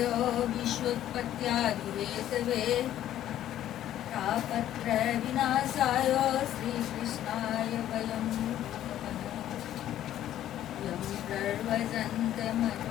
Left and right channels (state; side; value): quieter; right; 12.1 dB